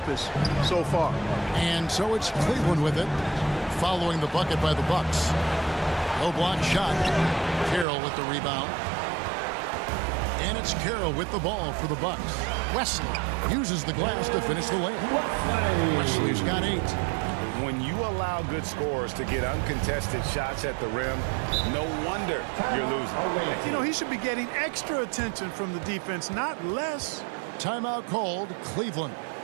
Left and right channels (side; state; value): left; drops out; at 7.9 s